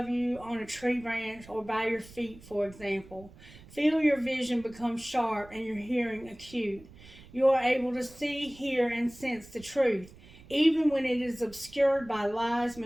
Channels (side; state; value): right; noise; rumble, 21 dB below the sound